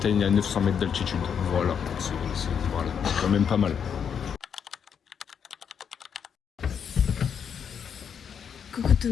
à 900 mètres d'altitude. Voilà, c'est quand même pas mal. Coucou tout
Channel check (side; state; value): right; quieter; 7.5 dB